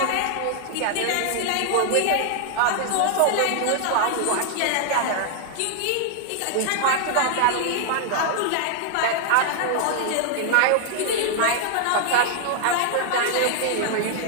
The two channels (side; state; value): both; different; correlation 0.00